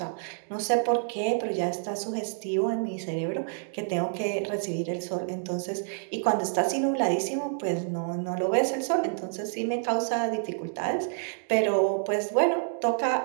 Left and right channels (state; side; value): silent; left; digital silence